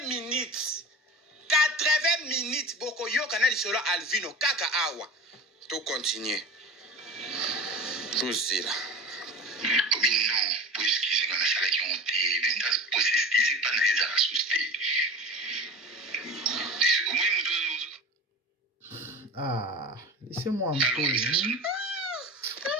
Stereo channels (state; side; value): normal; both; correlation 0.33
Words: minutes. 80 minutes. Boko yo canal solo Alvino. Kaka awa. Tout continue. Tout zira. Oui, non. Pour excuser, on a ça qui ont été. Pour s'excuser, pas dans les assustés. Ah, laissez-moi un peu.